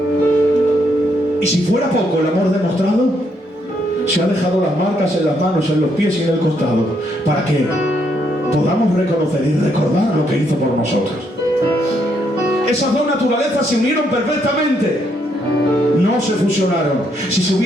Y si fuera poco el amor demostrado, se ha dejado las marcas en las manos, en los pies y en el costado, para que podamos reconocer y recordar lo que hizo por nosotros. Esas dos naturalezas se unieron perfectamente, no se fusionaron. Si se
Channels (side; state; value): both; normal; correlation 0.74